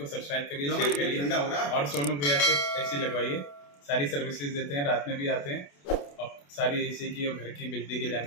सब्सक्राइब करिए, शेयर करिए और सोनू भैया से एसी लगवाइए। सारी सर्विसेज देते हैं, रात में भी आते हैं और सारी एसी की और घर की बिजली की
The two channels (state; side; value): late; right; 28 ms